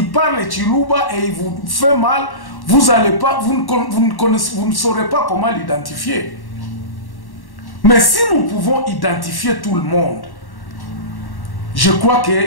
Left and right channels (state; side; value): late; right; 1.1 ms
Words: parle Chiluba et il vous fait mal, vous ne saurez pas comment l'identifier. Mais si nous pouvons identifier tout le monde, je crois